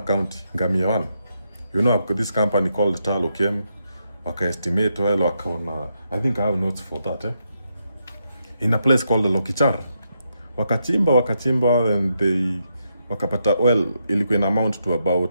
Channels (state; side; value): inverted; both; correlation -0.81